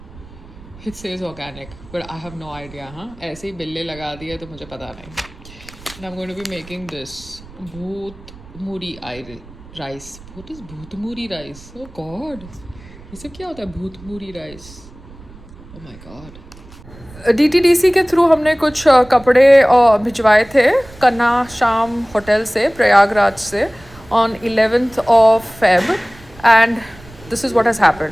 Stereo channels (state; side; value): noise; right; rumble, 20 dB below the sound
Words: It says organic, but I have no idea. ऐसे ही बिल्ले लगा दिए तो मुझे पता नहीं. And I'm going to be making this bhoot muri rice. What is bhoot muri rice? Oh God, ये सब क्या होता है bhoot muri rice? Oh my God. DTDC के थ्रू हमने कुछ कपड़े भिजवाए थे कन्ना शाम होटल से प्रयागराज से on 11th of Feb and this is what has